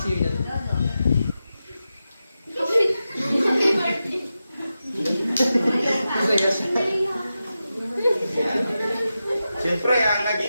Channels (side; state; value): both; inverted; correlation -0.91